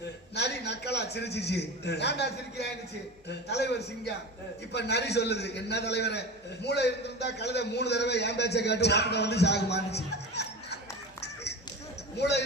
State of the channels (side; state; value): both; normal; correlation 0.30